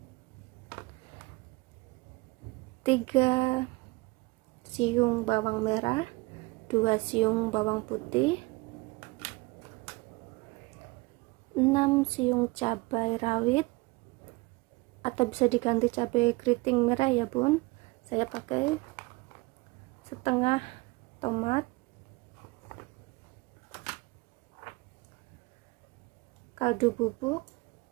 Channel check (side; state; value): left; quieter; 24.0 dB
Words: 3 siung bawang merah, 2 siung bawang putih, 6 siung cabai rawit atau bisa diganti cabai keriting merah ya Bun. Saya pakai setengah tomat, kaldu bubuk,